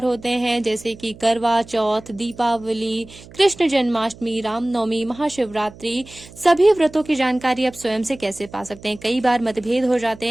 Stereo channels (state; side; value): noise; right; hum, 20 dB below the sound